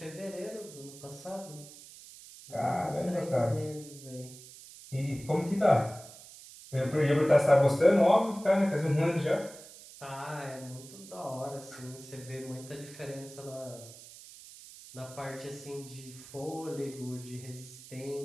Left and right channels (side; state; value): right; noise; hiss, 17 dB below the sound